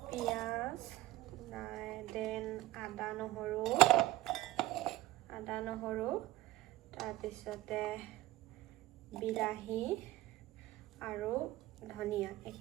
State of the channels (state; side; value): quieter; left; 16.9 dB